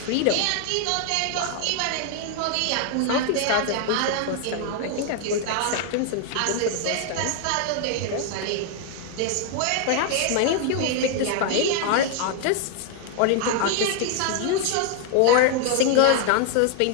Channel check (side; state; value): both; different; correlation 0.00